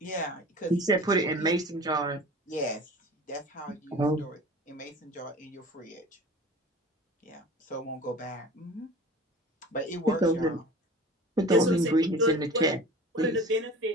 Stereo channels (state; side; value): normal; both; correlation 0.39